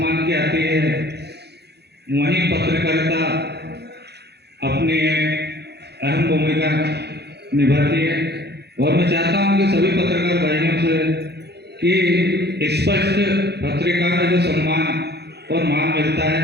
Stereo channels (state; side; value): late; left; 0.48 ms